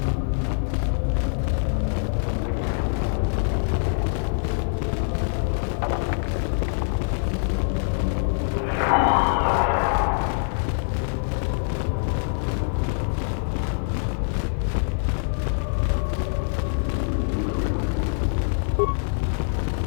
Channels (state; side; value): silent; right; 62 dB below the other